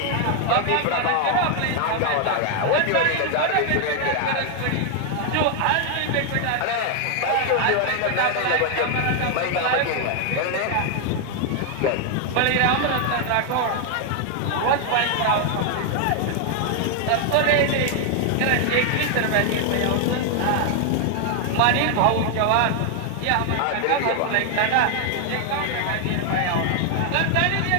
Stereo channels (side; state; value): both; different; correlation 0.00